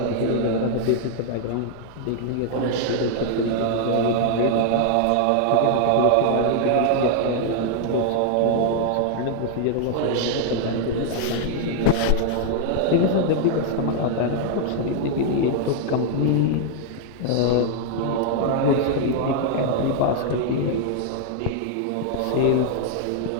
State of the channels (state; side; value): different; both; correlation 0.00